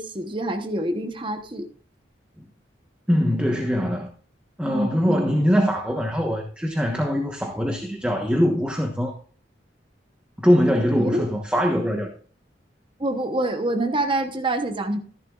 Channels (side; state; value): both; normal; correlation 0.84